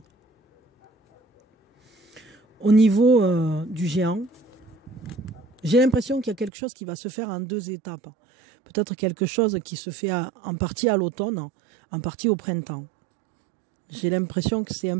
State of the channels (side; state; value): left; drops out; at 6.5 s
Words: Au niveau du géant, j'ai l'impression qu'il y a quelque chose qui va se faire en deux étapes. Peut-être quelque chose qui se fait en partie à l'automne, en partie au printemps. J'ai l'impression que c'est